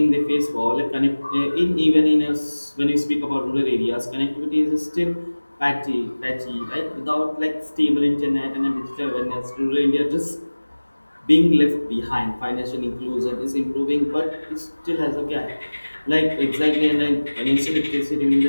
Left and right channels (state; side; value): inverted; both; correlation -1.00